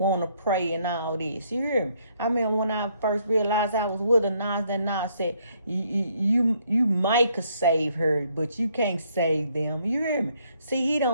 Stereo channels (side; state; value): both; inverted; correlation -0.69